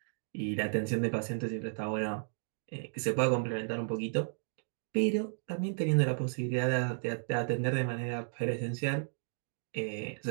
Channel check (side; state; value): left; silent; digital silence